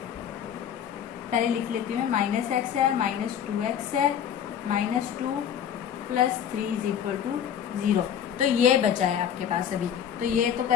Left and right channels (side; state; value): right; quieter; 8.9 dB